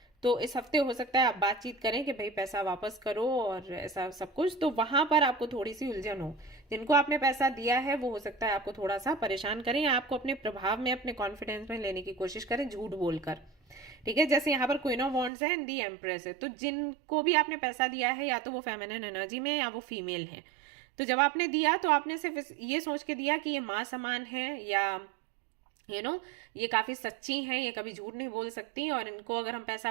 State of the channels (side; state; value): left; drops out; at 15.3 s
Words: तो इस हफ्ते हो सकता है आप बातचीत करें कि भाई पैसा वापस करो और ऐसा सब कुछ, तो वहां पर आपको थोड़ी सी उलझन हो. जिनको आपने पैसा दिया है वो हो सकता है आपको थोड़ा सा परेशान करें, या आपको अपने प्रभाव में, अपने कॉन्फिडेंस में लेने की कोशिश करें झूठ बोलकर, ठीक है. जैसे यहाँ पर क्वीन ऑफ वॉन्ड्स है एंड दी एम्प्रेस है, तो जिनको भी आपने पैसा दिया है या तो वो फेमिनिन एनर्जी में या वो फीमेल है. तो जब आपने दिया तो आपने सिर्फ ये सोच के दिया कि ये माँ समान है, या ये काफी सच्ची हैं, ये कभी झूठ नहीं बोल सकती, और इनको अगर हम पैसा